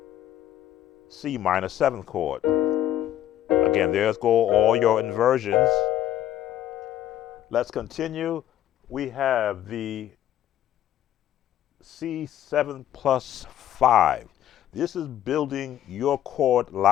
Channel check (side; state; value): right; quieter; 11.9 dB